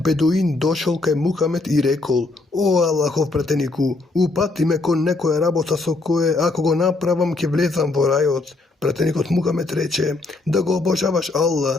бедуин дошол кај Мухамед и рекол: о Аллахов пратенику, упати ме кон некоја работа со кое, ако го направам, ќе влезам во рајот. Пратеникот Мухамед рече: да го обожаваш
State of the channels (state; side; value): quieter; right; 3.3 dB